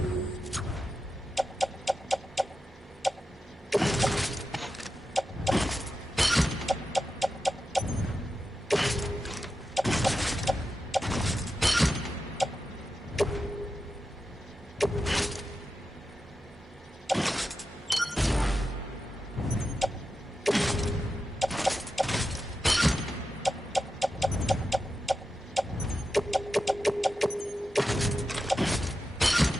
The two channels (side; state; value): both; normal; correlation 0.90